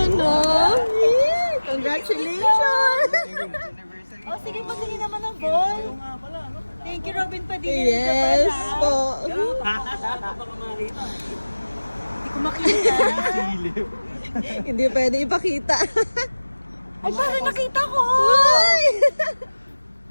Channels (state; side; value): inverted; both; correlation -1.00